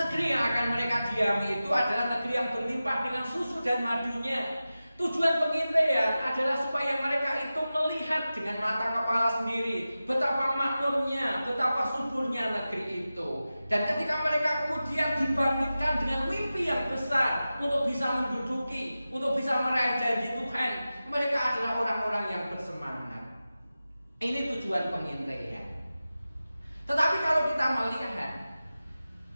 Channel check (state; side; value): inverted; both; correlation -0.94